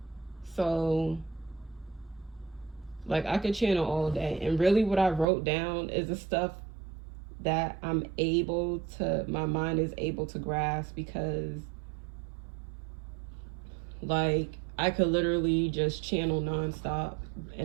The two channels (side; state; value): left; drops out; at 5.2 s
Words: So like I could channel all day. And really what I wrote down is the stuff that my mind is able to grasp, because like I could literally just channel nonstop